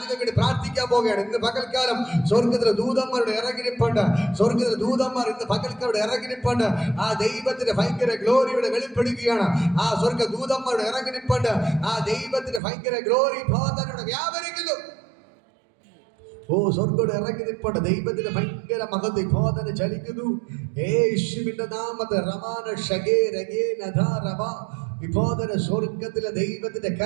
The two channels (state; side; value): drops out; left; at 12.6 s